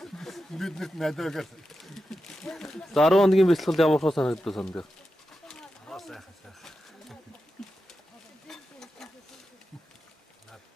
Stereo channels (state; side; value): normal; both; correlation 0.90